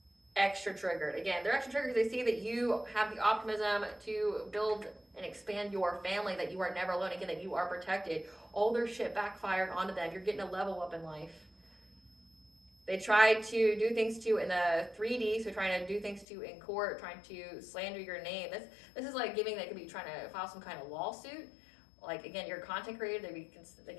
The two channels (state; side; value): drops out; right; at 16.2 s